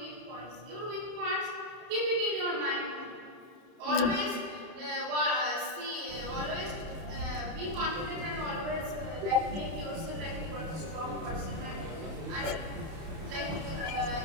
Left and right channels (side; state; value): left; late; 31 ms